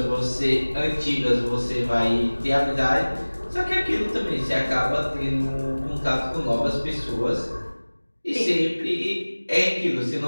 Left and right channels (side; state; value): both; inverted; correlation -1.00